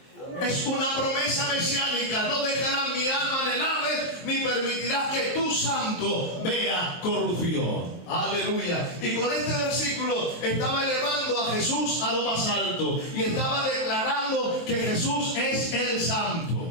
Es una promesa mesiánica: no dejarás mi alma en el Hades, ni permitirás que tu santo vea corrupción. Aleluya. Y con este versículo estaba elevando a Jesús a lo más alto y estaba declarando que Jesús es el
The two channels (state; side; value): late; right; 23 ms